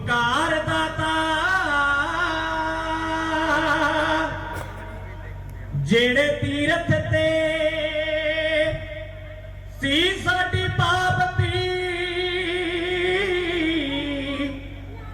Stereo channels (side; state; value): both; identical; correlation 1.00